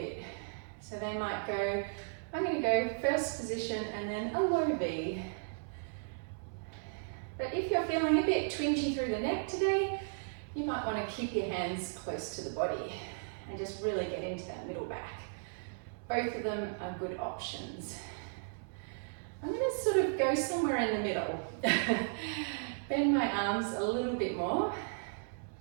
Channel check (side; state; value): left; silent; 54 dB below the other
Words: So they might go, I'm going to go first position and then a low V. But if you're feeling a bit twingy through the neck today, you might want to keep your hands close to the body and just really get into that middle back. Both of them are good options. I'm going to sort of go somewhere in the middle. Bend my arms a little bit more.